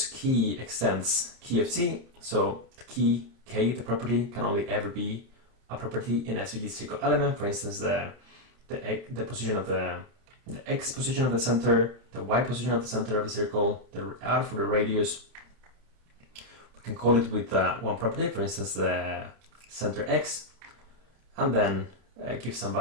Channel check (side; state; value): left; late; 30 ms